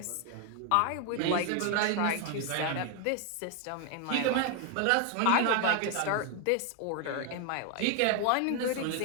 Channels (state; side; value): different; both; correlation 0.00